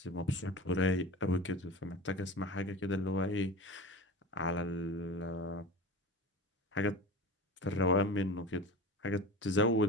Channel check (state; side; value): normal; both; correlation 0.32